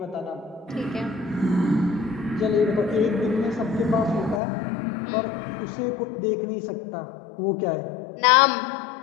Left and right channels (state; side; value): drops out; right; at 4.4 s